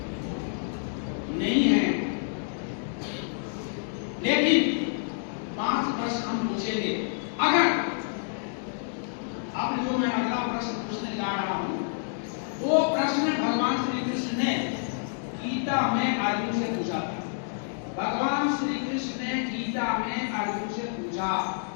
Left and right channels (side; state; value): right; silent; digital silence